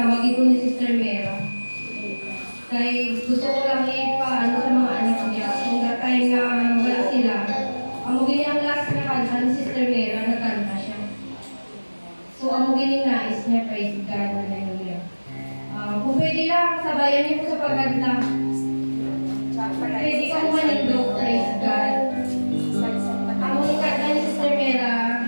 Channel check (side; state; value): both; inverted; correlation -1.00